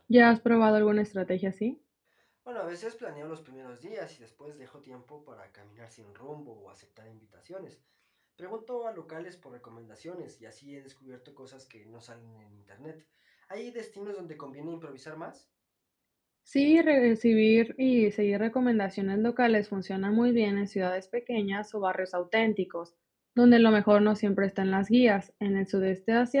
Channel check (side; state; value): both; identical; correlation 1.00